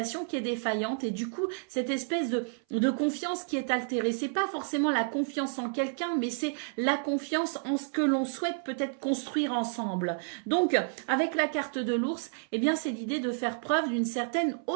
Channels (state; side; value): silent; left; 58 dB below the other